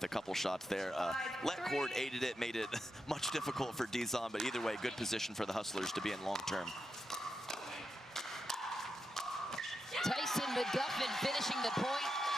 a couple shots there. Let cord aided it, made it much difficult for Dizon, but either way, good position for the Hustlers to be in long term. Tyson McGuffin finishing the point.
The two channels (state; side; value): normal; both; correlation 0.86